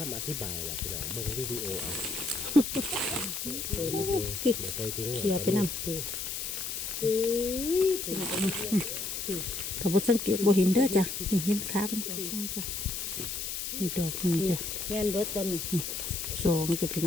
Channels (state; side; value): noise; left; hiss, 4 dB below the sound